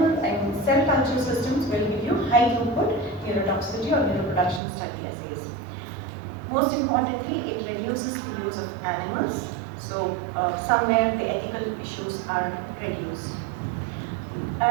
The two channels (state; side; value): drops out; left; at 4.6 s